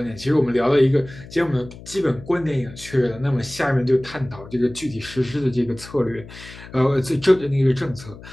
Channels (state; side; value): noise; left; hum, 17 dB below the sound